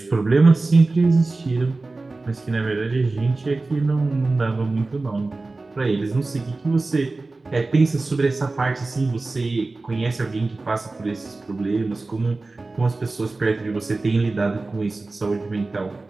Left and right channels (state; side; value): quieter; left; 3.4 dB